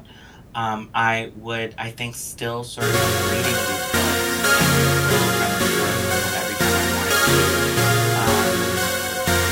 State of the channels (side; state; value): both; identical; correlation 1.00